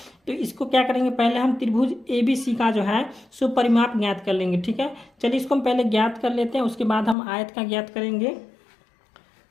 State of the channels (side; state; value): right; drops out; at 7.2 s